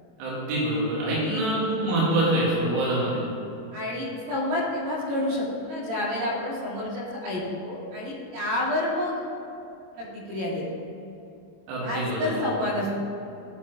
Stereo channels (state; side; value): late; left; 25 ms